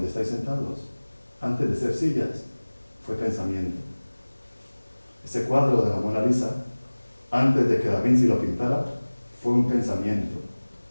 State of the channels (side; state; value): both; inverted; correlation -1.00